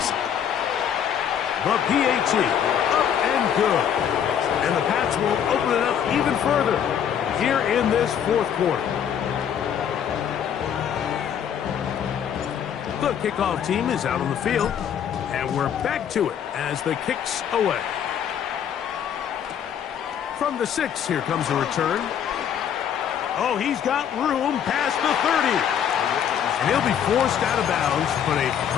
The PAT, up and good. And the Pats will open it up even further here in this 4th quarter. The kickoff team is out on the field, and we're back to it as the kick's away. From the 6, here comes a return. Oh, he's got room past the 30. And he'll be forced out of bounds, but a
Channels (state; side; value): quieter; right; 8.8 dB